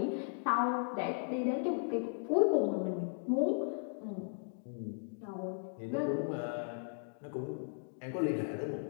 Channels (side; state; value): right; silent; digital silence